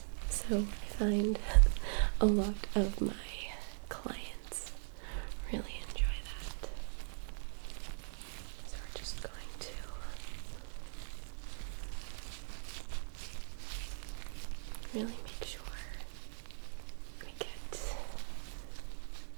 So I find a lot of my clients really enjoy that. So we're just going to really make sure we get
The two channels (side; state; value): left; silent; digital silence